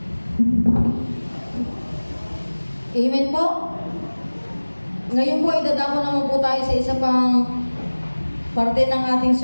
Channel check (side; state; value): both; inverted; correlation -1.00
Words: Amen po. Ngayon po, idadako naman po tayo sa isa pang parte ng ating